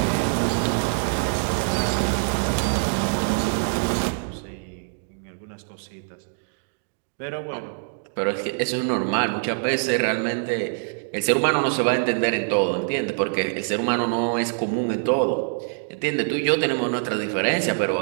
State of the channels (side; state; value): left; silent; digital silence